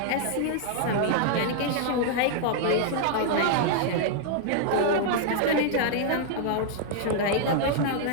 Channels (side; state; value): both; different; correlation -0.01